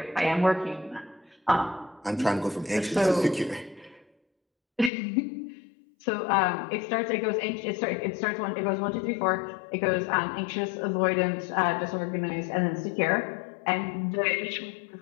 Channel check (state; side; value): drops out; right; at 4.9 s